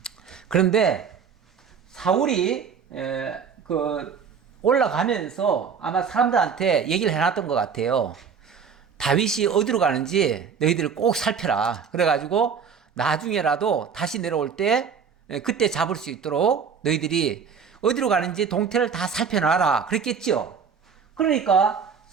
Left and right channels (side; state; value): left; quieter; 6.5 dB